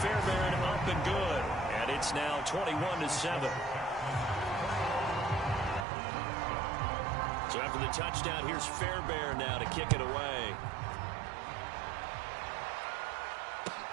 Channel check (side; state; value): left; drops out; at 5.9 s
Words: up and good. And it's now 21-7. So after the touchdown, here's Fairbairn now to kick it away.